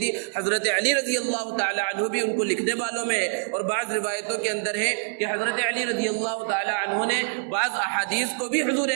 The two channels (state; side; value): silent; left; digital silence